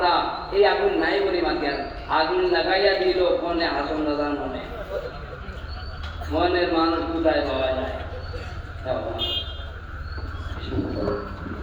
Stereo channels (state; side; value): identical; both; correlation 1.00